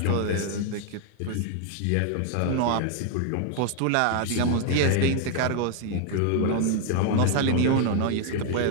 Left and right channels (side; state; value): both; different; correlation 0.00